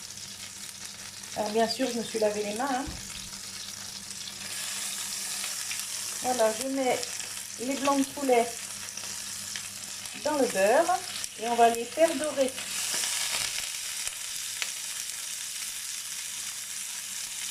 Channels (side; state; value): both; identical; correlation 1.00